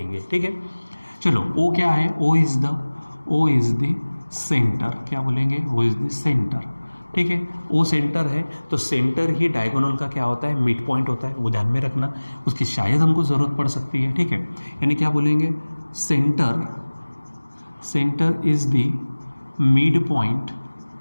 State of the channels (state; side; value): inverted; both; correlation -1.00